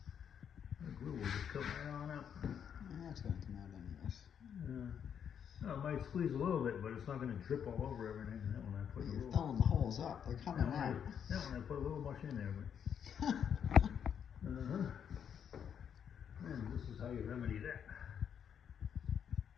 The glue will just come right on out. That's going to come out anyways. No, it might squeeze a little bit, but it's not going to drip all over everything. That one I put a You're little. filling the holes up. They're coming out. That one I put a little much in there. But and this is how you remedy that.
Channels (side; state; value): right; quieter; 8.1 dB